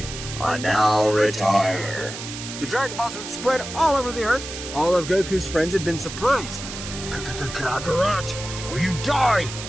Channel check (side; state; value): right; noise; hiss, 9 dB below the sound